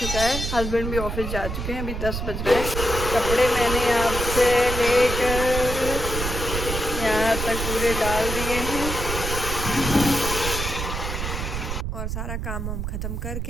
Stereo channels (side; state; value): right; noise; rumble, 4 dB below the sound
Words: है। हस्बैंड भी ऑफिस जा चुके हैं, अभी 10 बज रहे हैं। कपड़े मैंने यहाँ से लेकर यहाँ तक पूरे डाल दिए हैं, और सारा काम वाम ख़त्म